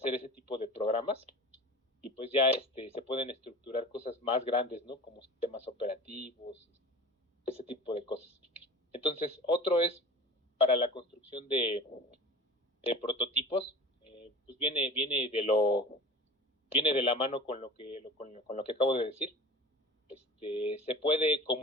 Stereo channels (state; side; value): normal; both; correlation 0.37